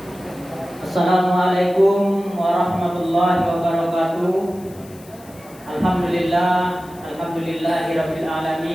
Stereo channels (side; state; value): left; noise; hiss, 24 dB below the sound